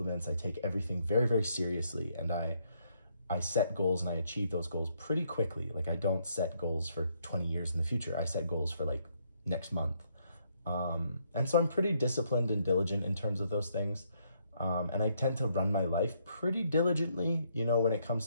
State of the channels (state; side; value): inverted; both; correlation -0.72